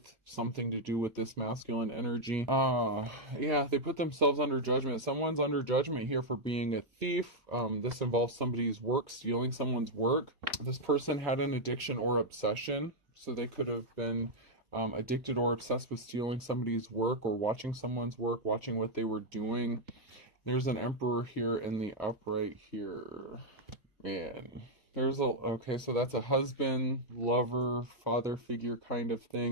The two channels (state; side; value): late; left; 2.0 ms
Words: something to do with this masculine energy. Yeah, they put themselves under judgment. Someone's under judgment here for being a thief. This involves somebody's work, stealing someone's work. This person had an addiction or obsession, so they could have been addicted or obsessed with stealing somebody's work or watching someone's work, watching what they were doing. There's an Emperor here in the upright here. Man. There's a, okay, so that's a husband, lover, father figure kind of